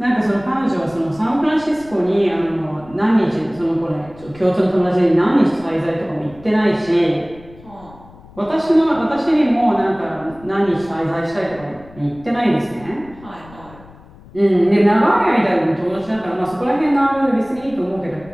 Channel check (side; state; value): left; noise; rumble, 22 dB below the sound